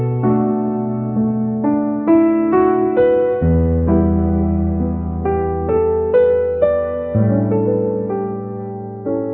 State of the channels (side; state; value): both; identical; correlation 1.00